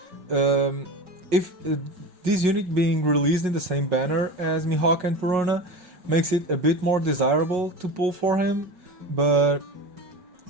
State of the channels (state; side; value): late; left; 5.5 ms